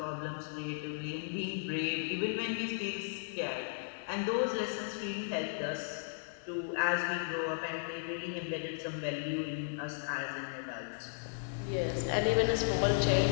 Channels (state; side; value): silent; right; 54 dB below the other